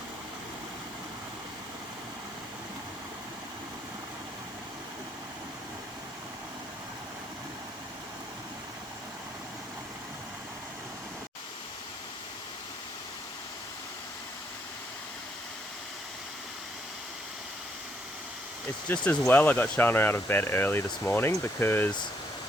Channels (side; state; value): both; normal; correlation 0.72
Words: It's just as well I got Sharnah out of bed early this morning because